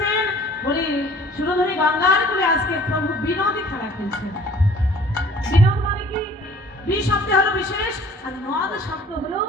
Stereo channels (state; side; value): normal; both; correlation 0.52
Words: বলি সুরধরি গঙ্গার করে আজকে প্রভু বিনোদী খেলা খেলছেন। বিনোদ মানে কি? বি শব্দ হলো বিশেষ, আর নদ শব্দ হলো